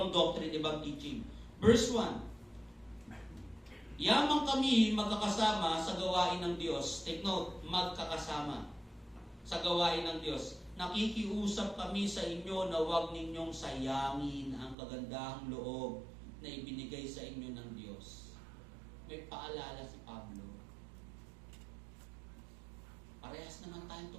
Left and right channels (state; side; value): drops out; left; at 14.8 s